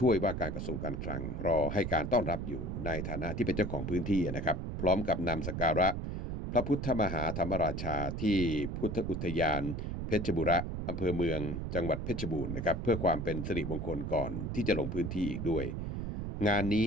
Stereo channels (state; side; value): noise; right; rumble, 4 dB below the sound